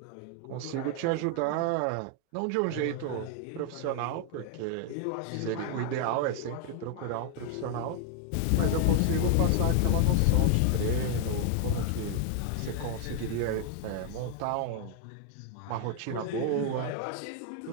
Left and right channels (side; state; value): both; different; correlation 0.00